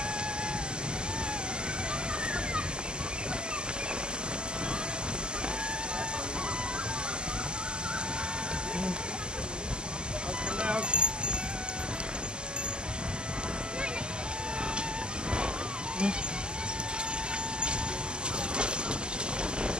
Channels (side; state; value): left; late; 0.047 ms